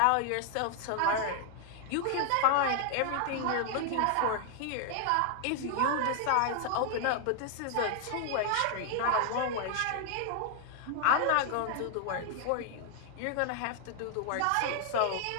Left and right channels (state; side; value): different; both; correlation 0.00